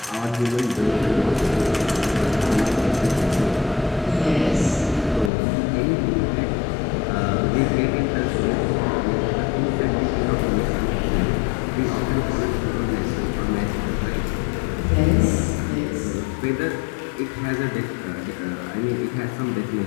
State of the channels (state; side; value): drops out; right; at 5.3 s